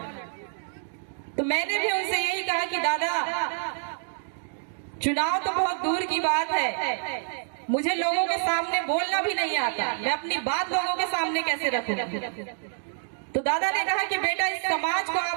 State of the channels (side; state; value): left; silent; digital silence